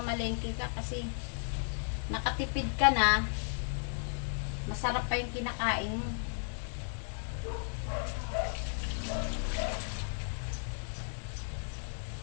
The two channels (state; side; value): silent; right; digital silence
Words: ka kasi nakatipid ka na, masarap pa yung kinakain mo.